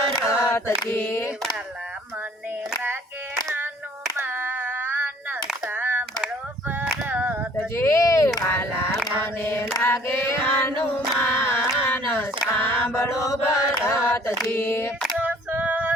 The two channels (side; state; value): both; normal; correlation 0.55